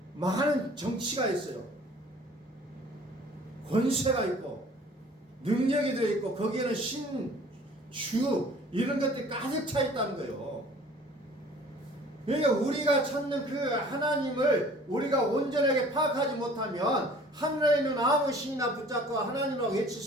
많은 정치가 있어요. 권세가 있고 능력이 들어있고 거기에는 신, 주 이런 것들이 가득 차 있다는 거예요. 그러니까 우리가 찾는 그 하나님을 우리가 온전하게 파악하지 못하면 하늘에 있는 아무 신이나 붙잡고 하나님이라고 외칠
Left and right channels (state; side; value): normal; both; correlation 0.50